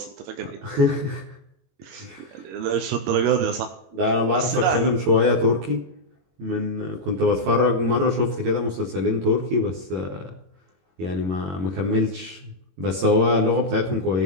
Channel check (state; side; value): late; left; 21 ms